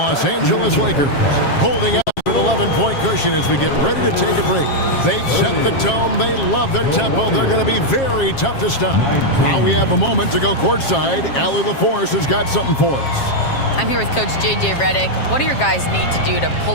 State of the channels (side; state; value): right; late; 7.4 ms